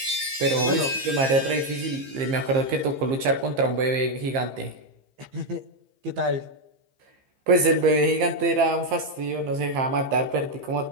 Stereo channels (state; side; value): late; left; 15 ms